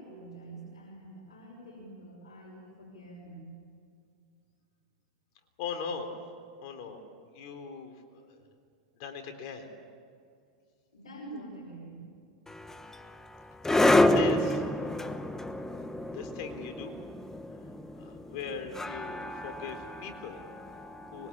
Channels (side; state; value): both; normal; correlation 0.78